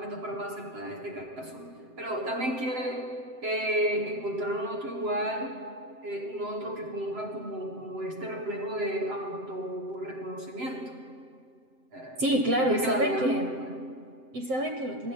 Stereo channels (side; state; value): left; late; 7.7 ms